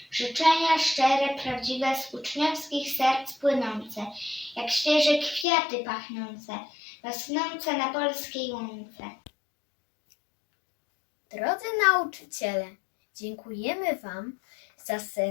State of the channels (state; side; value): drops out; right; at 5.5 s